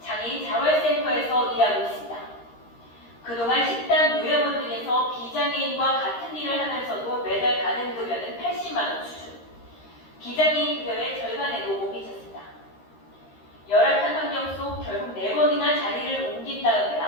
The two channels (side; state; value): right; late; 13 ms